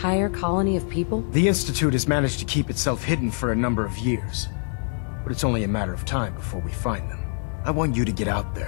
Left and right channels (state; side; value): silent; right; 57 dB below the other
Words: colony of people? The Institute has managed to keep itself hidden for a number of years, but it's only a matter of time before we find them. I want you to get out